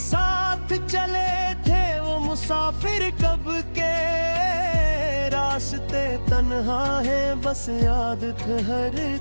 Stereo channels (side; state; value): both; inverted; correlation -1.00